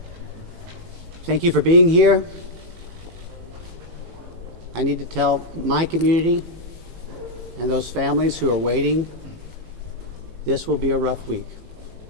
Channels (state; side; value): late; left; 18 ms